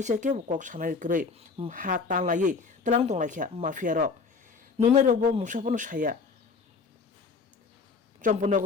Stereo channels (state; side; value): quieter; right; 4.8 dB